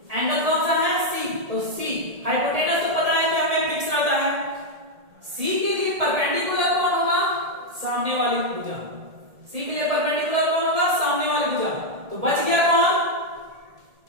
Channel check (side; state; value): left; late; 1.7 ms